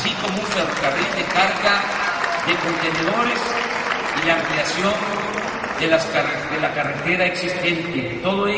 como un ferrocarril de carga de contenedores y la ampliación de la carretera existente. Todo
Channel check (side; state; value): both; identical; correlation 1.00